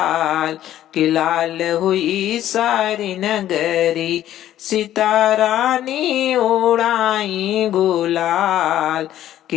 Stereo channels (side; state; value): right; quieter; 12.4 dB